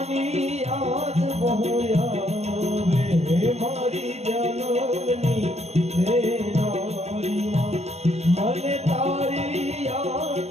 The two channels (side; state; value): left; late; 0.31 ms